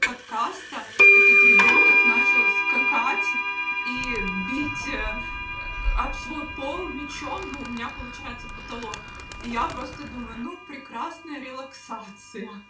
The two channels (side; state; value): both; identical; correlation 1.00